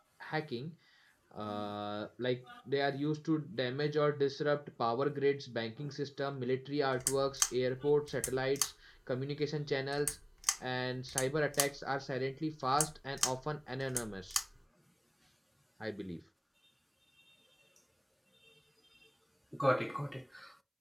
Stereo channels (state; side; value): identical; both; correlation 1.00